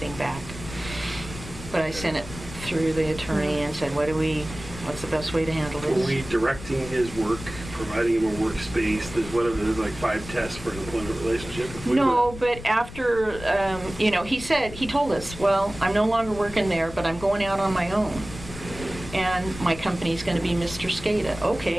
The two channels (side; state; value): left; noise; rumble, 13 dB below the sound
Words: back. But I sent it through the attorney and said, what's the best way to handle Were this? we directing his work, providing him a workspace, there's like 5 tests for an employment relationship? If we No, but after, he told us, well, I'm no longer working there, but I'm going out on my own. And my company's gonna be Mr. Skata.